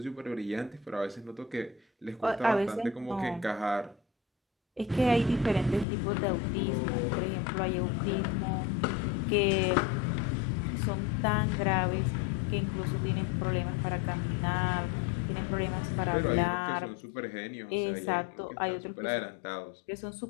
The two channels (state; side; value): drops out; right; at 5.9 s